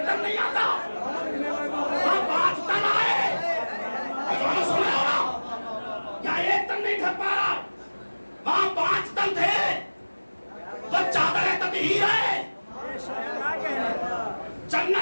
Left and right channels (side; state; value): both; inverted; correlation -1.00